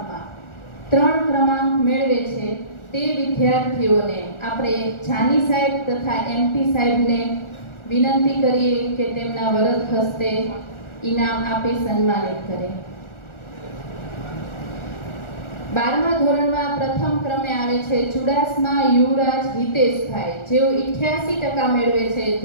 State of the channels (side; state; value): right; late; 1.4 ms